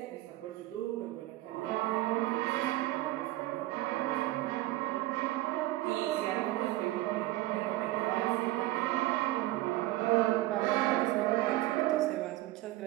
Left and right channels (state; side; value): quieter; left; 17.3 dB